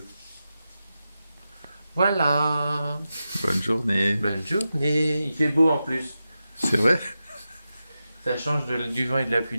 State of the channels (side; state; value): both; inverted; correlation -0.91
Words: Voilà. Bonne journée. Bonne journée. Il fait beau en plus. C'est vrai? Ça change du vent et de la